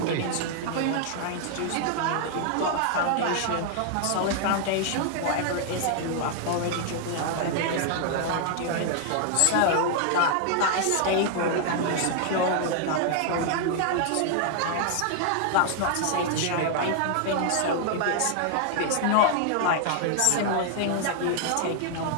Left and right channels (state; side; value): different; both; correlation 0.00